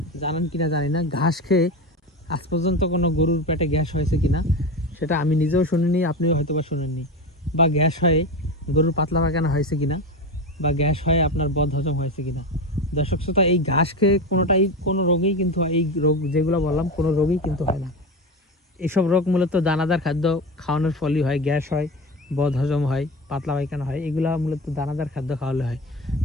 জানেন কিনা জানি না, ঘাস খেয়ে আজ পর্যন্ত কোনো গরুর পেটে গ্যাস হয়েছে কিনা সেটা আমি নিজেও শুনিনি, আপনিও হয়তো বা শুনেননি। বা গ্যাস হয়ে গরুর পাতলা পায়খানা হয়েছে কিনা, বা গ্যাস হয়ে আপনার বদহজম হয়েছে কিনা। দর্শক শ্রোতা, এই ঘাস খেয়ে কোনো রোগেই কিন্তু এই রোগ যেগুলো বললাম কোনো রোগই কিন্তু হয় না। এইসব রোগ মূলত দানাদার খাদ্য খাওয়ানোর ফলই হয়। গ্যাস হয়, বদহজম হয়, পাতলা পায়খানা হয়, এগুলো মূলত দানাদার খাদ্য খাওয়ালে হয়।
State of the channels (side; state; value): both; normal; correlation 0.23